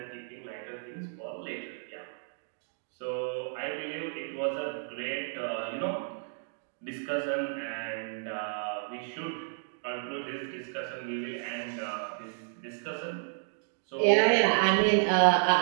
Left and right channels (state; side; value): silent; left; digital silence